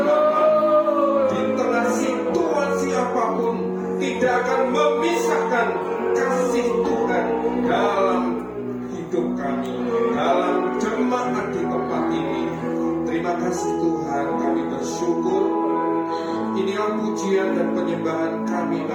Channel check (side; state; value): both; identical; correlation 1.00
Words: Bapa. Di tengah situasi apapun, tidak akan memisahkan kasih Tuhan dalam hidup kami, dalam jemaat di tempat ini. Terima kasih Tuhan, kami bersyukur. Inilah pujian dan penyembahan kami